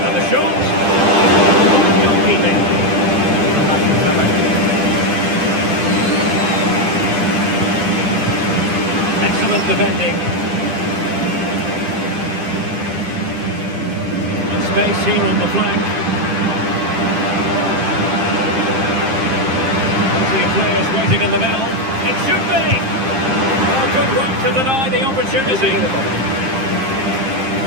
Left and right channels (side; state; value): left; late; 7.6 ms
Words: And the shot. And one goalkeeping. Excellent defending. And space here on the flank. Plenty of players waiting in the middle. It should be! Well, good work to deny the opportunity.